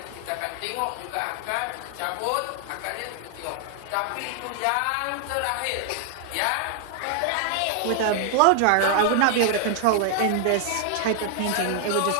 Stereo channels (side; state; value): both; different; correlation 0.00